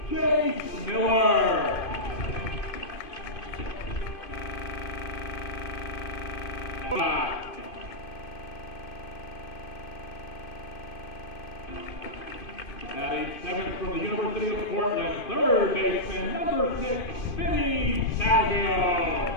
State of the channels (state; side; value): late; right; 2.5 ms